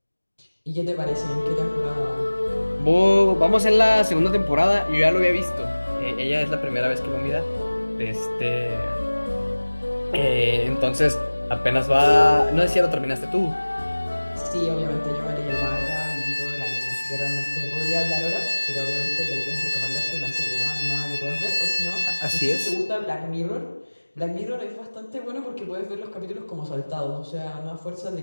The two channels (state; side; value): inverted; both; correlation -1.00